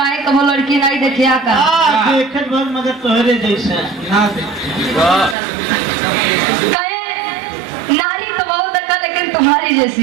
कब लड़की नहीं देखिया का देखत बहुत मगर तोहरे जैसा ना काहे नारी तो बहुत देखा लेकिन तुम्हारी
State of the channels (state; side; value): drops out; left; at 5.4 s